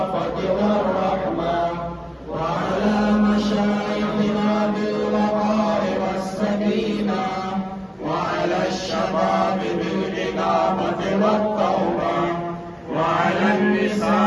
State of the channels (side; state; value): both; identical; correlation 1.00